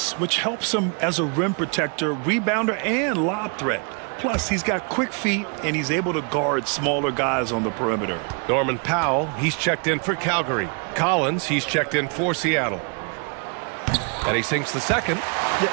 which helps him as a rim protector, rebounder, and lob threat. Plus, he's got quick feet, and he's able to guard smaller guys on the perimeter. Norman Powell, he's checked in for Calgary. Collins, he's checked in for Seattle. And he sinks the second. Yeah,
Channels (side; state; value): left; quieter; 37.8 dB